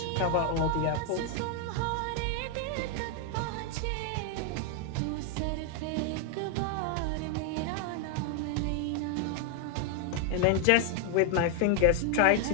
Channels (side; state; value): both; different; correlation 0.00